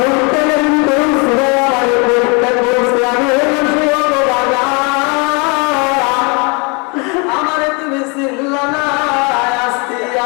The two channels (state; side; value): quieter; right; 31.4 dB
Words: তেলের করছে, আমার করতে করছে, আমি আমারে তুমি চিনলা না, আসতে